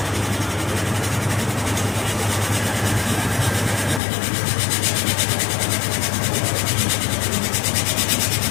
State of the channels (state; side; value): drops out; right; at 4.0 s